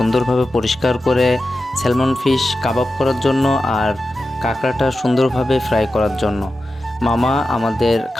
পরিষ্কার করে স্যালমন ফিশ কাবাব করার জন্য আর কাঁকড়াটা সুন্দরভাবে ফ্রাই করার জন্য। মামা আমাদের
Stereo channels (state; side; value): normal; both; correlation 0.92